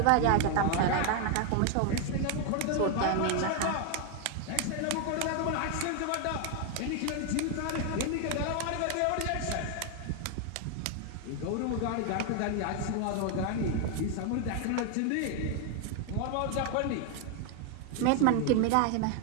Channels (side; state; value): both; different; correlation 0.01